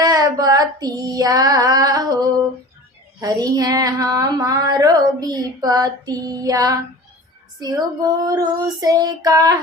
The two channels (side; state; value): both; normal; correlation 0.38